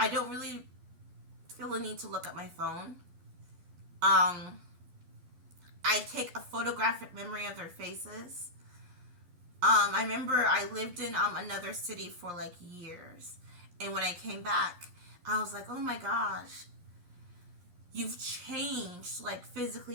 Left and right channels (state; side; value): late; left; 11 ms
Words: don't really feel the need to look at my phone. I take a photographic memory of their faces. I remember I lived in another city for like years, and when I came back, I was like, oh my gosh, you've changed, like